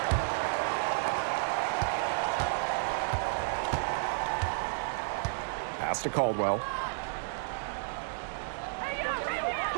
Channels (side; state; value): left; silent; digital silence